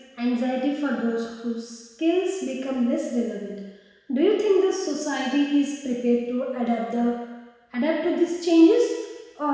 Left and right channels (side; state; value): both; identical; correlation 1.00